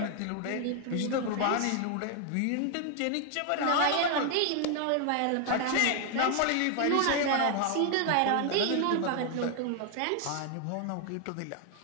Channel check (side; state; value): both; different; correlation 0.00